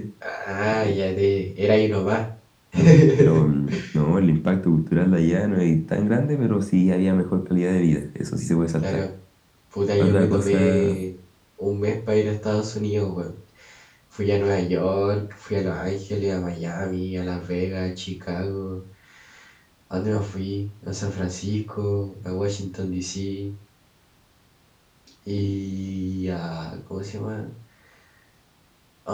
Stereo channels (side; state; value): both; identical; correlation 1.00